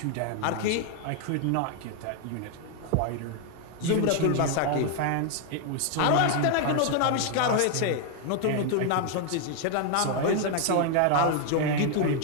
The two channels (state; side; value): different; both; correlation 0.00